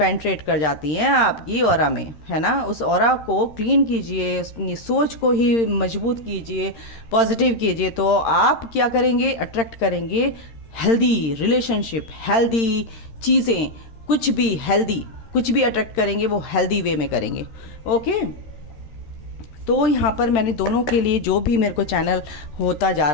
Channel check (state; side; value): late; right; 13 ms